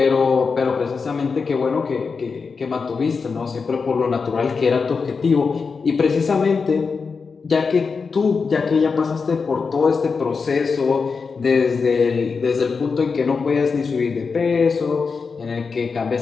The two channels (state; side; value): quieter; right; 5.0 dB